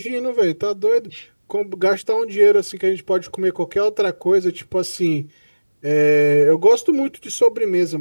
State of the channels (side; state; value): both; inverted; correlation -1.00